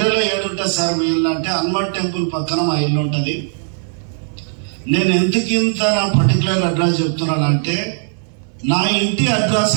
ఏడుంటుంది సార్ మీ ఇల్లు అంటే హనుమాన్ టెంపుల్ పక్కన మా ఇల్లు ఉంటుంది. నేను ఎందుకు ఇంత నా పర్టికులర్ అడ్రస్ చెప్తున్నానంటే నా ఇంటి అడ్రస్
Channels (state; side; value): silent; left; digital silence